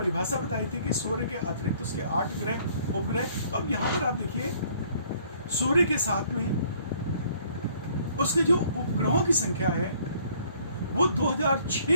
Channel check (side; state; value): both; inverted; correlation -0.60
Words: बताई थी कि सूर्य के अतिरिक्त उसके 8 ग्रह, उपग्रह। तो अब यहां पर आप देखिए, सूर्य के साथ में उसके जो उपग्रहों की संख्या है वो